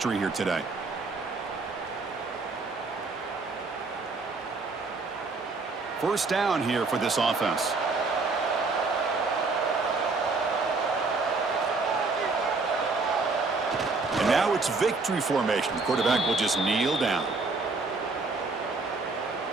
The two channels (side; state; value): left; quieter; 3.8 dB